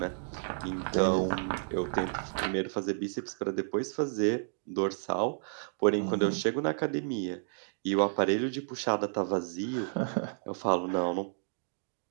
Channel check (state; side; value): silent; left; digital silence